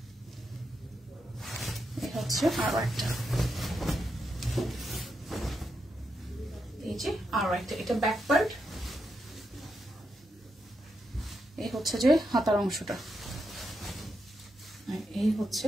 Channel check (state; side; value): normal; both; correlation 0.84